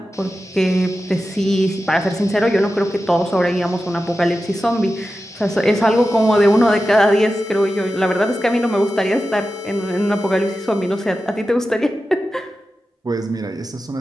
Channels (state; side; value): normal; both; correlation 0.92